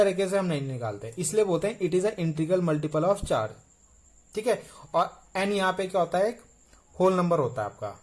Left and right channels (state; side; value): identical; both; correlation 1.00